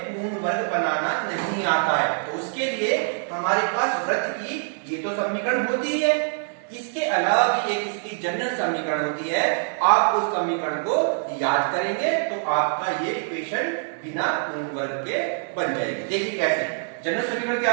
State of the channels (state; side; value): silent; left; digital silence